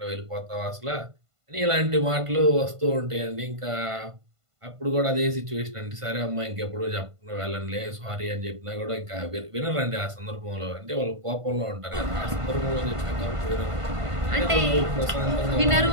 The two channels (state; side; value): late; left; 1.5 ms